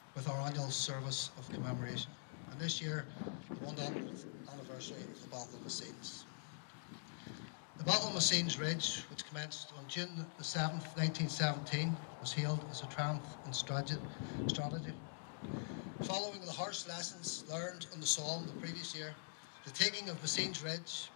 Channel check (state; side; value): silent; right; digital silence